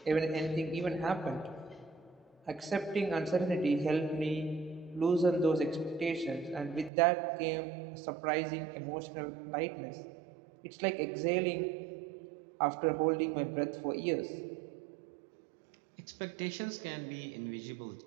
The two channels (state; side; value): drops out; left; at 6.9 s